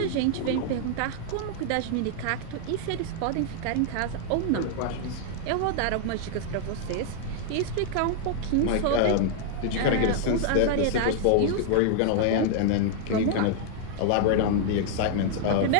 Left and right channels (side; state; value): both; different; correlation 0.00